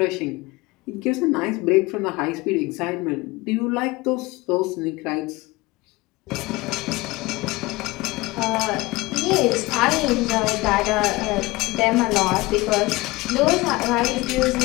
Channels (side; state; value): right; quieter; 21.6 dB